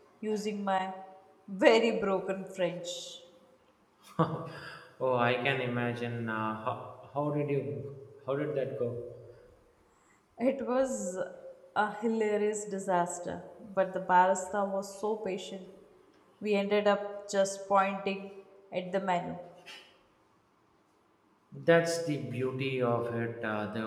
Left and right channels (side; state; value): both; identical; correlation 1.00